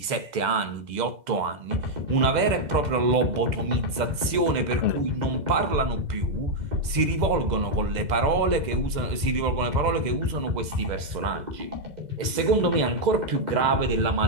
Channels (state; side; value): late; left; 2.0 ms